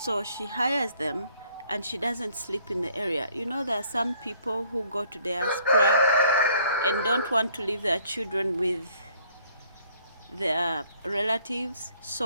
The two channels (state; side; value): inverted; both; correlation -0.62